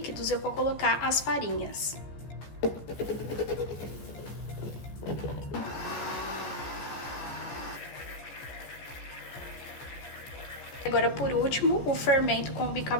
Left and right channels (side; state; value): right; late; 14 ms